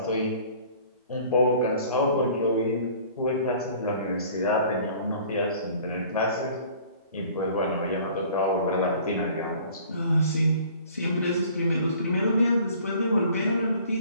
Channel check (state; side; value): inverted; both; correlation -0.51